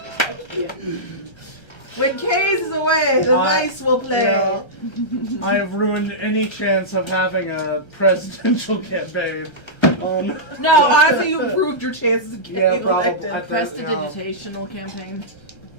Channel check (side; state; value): right; late; 1.3 ms